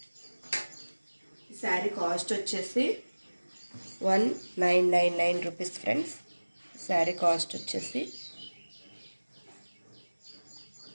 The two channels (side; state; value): both; inverted; correlation -1.00